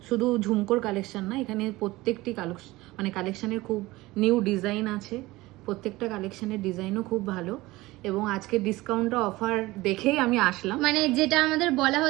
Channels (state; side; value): quieter; left; 19.6 dB